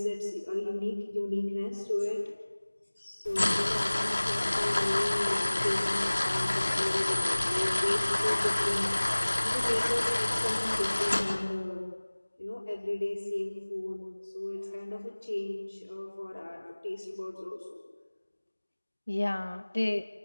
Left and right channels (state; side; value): inverted; both; correlation -1.00